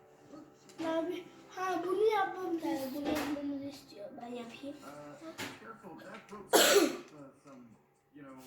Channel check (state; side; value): identical; both; correlation 1.00